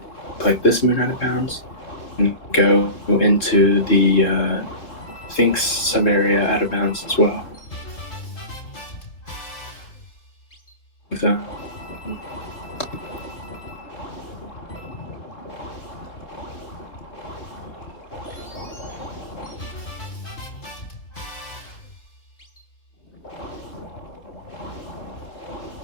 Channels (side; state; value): right; late; 3.8 ms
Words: Like this moon out of bounds, and go into the Sphinx sub-area out of bounds as well. So,